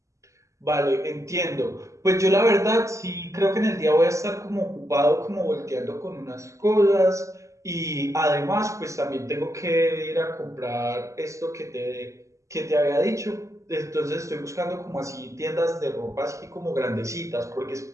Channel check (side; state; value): left; late; 0.15 ms